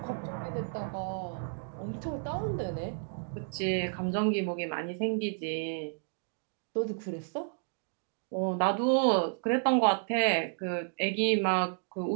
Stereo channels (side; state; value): left; silent; 57 dB below the other